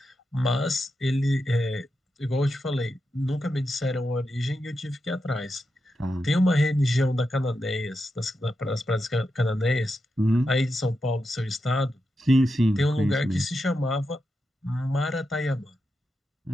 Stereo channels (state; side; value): normal; both; correlation 0.88